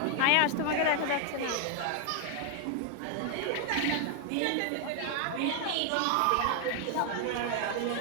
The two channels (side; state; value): both; different; correlation 0.00